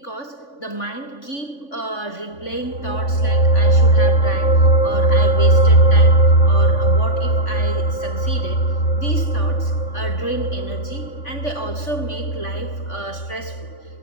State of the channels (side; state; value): right; late; 3.5 ms